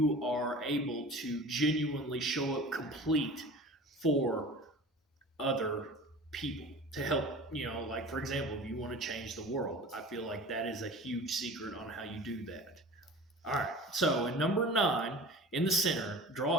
are able to genuinely show up complete for other people to help. Like, for example, if you want to change the world, I feel like that is a huge secret on how you do that. All right, so in number 9, in the center,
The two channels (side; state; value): both; normal; correlation 0.38